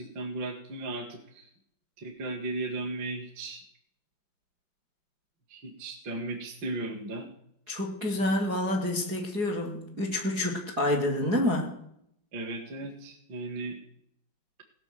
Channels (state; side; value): late; left; 4.8 ms